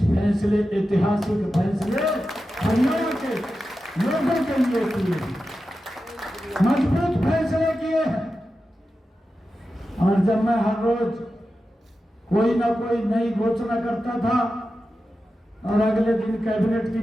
फैसले, ऐतिहासिक फैसले हरियाणा के लोगों के लिए किए, मजबूत फैसले किए हैं। और जब मैं हर रोज कोई ना कोई नई घोषणा करता था और अगले दिन कैबिनेट की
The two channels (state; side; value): normal; both; correlation 0.92